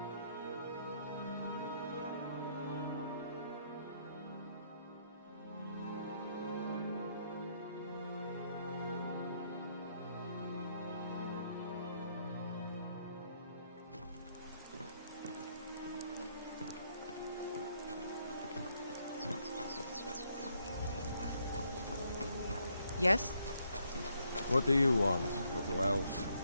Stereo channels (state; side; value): inverted; both; correlation -0.72